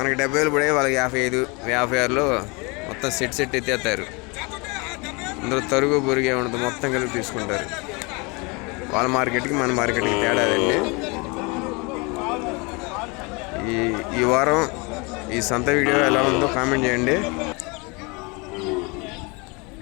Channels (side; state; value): right; quieter; 28.7 dB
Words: 70,000 పడే వాళ్ళకి 55-56లో మొత్తం సెట్ ఎత్తేస్తారు. అందులో తరుగు బొరుగు ఏముండదు, మొత్తం కలిపి తీసుకుంటారు. వాళ్ళ మార్కెట్కి మన మార్కెట్కి తేడాదండి. ఈ వారం ఈ సంత వీడియో ఎలా ఉందో కామెంట్ చేయండి.